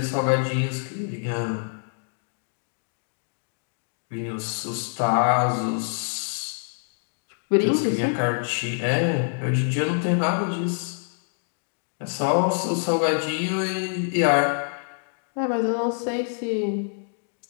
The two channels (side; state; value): right; silent; digital silence